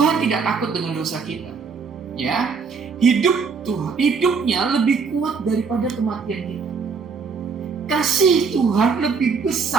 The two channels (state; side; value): quieter; left; 5.4 dB